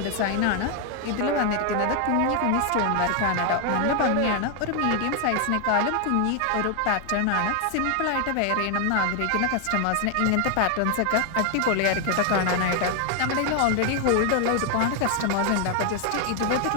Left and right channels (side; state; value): both; different; correlation 0.00